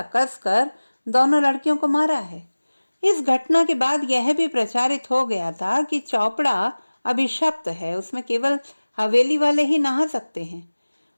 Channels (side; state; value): both; inverted; correlation -1.00